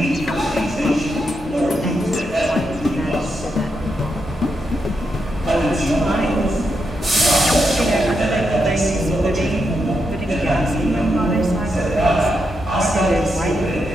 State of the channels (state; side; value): normal; both; correlation 0.83